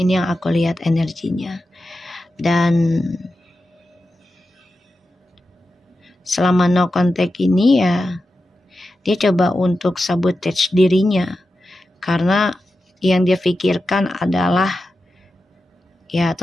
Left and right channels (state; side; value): normal; both; correlation 0.91